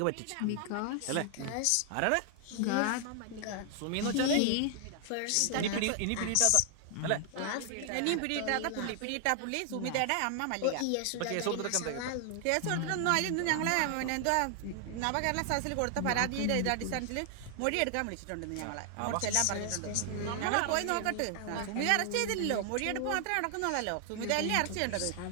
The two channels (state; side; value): different; both; correlation 0.00